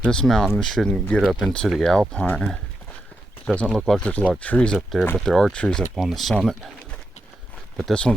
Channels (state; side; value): normal; both; correlation 0.85